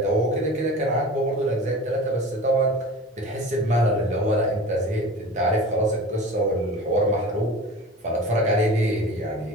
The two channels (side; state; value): both; normal; correlation 0.36